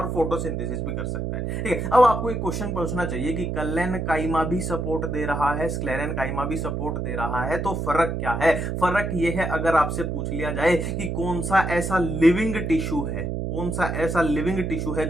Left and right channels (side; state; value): right; noise; hum, 2 dB below the sound